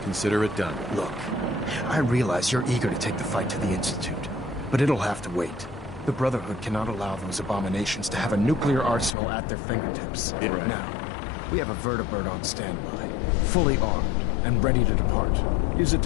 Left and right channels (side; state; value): right; drops out; at 9.2 s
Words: Consider it done. Look, I realize you're eager to take the fight to the Institute, but it'll have to wait. The Brotherhood cannot allow those abominations to have a nuclear arsenal at their fingertips. Right. Now, we have a Vertibird on standby, fully armed and ready to depart. Use it